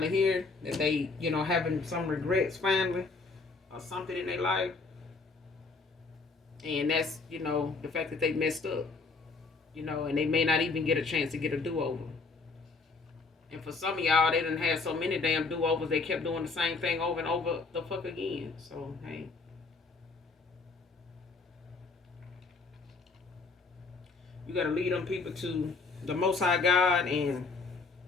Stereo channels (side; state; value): right; quieter; 4.1 dB